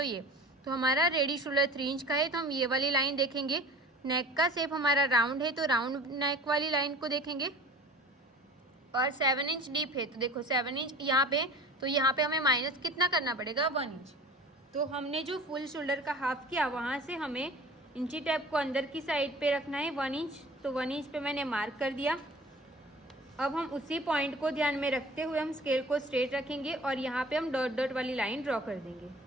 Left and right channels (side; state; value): both; normal; correlation 0.42